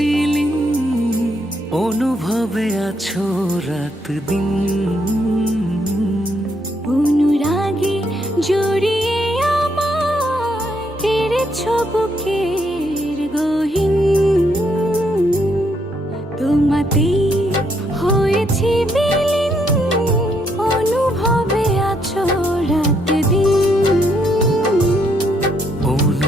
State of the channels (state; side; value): normal; both; correlation 0.74